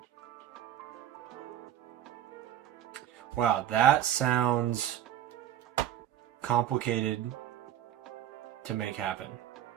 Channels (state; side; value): quieter; left; 11.3 dB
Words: Wow, that sounds complicated to make happen.